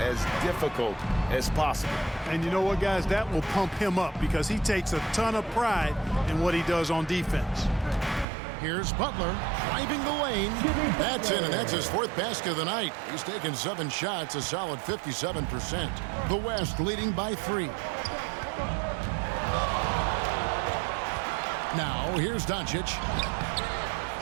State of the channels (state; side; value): drops out; left; at 8.2 s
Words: difficult as possible. And you know what, guys? That will pump him up because he takes a ton of pride in what he does on defense. Here's Butler driving the lane. That's in, and that's his 4th basket of the night. He's taken 7 shots, a solid 57%. The West leading by 3. Now, here's Doncic.